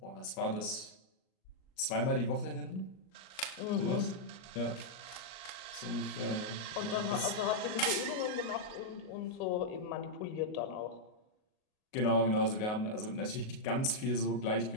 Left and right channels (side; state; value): right; late; 38 ms